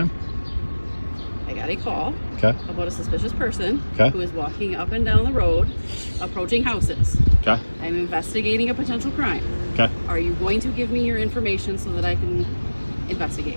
I got a call Okay. about a suspicious person Okay. who is walking up and down the road, approaching houses. Okay. I'm investigating a potential crime. Okay. Are you going to give me your information so that I can investigate?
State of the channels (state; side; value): inverted; both; correlation -1.00